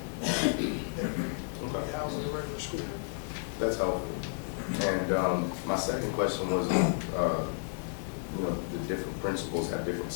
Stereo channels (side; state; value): right; silent; digital silence